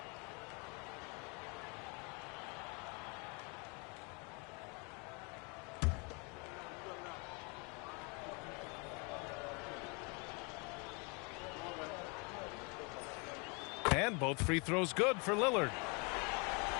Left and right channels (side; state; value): right; quieter; 32.2 dB